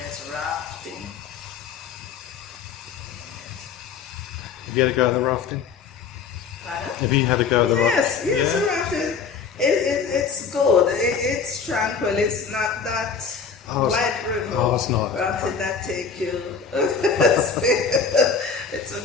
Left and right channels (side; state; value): right; quieter; 5.8 dB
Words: rafting. Have you had a go at the rafting? Pardon? Have you had a go at the rafting? Yes, the rafting. It's good. It's tranquil. It's not that white river. Oh, it's not. Rafting that take you. It's a